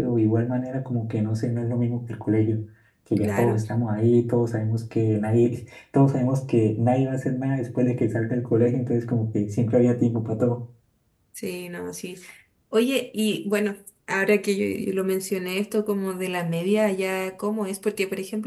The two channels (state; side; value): identical; both; correlation 1.00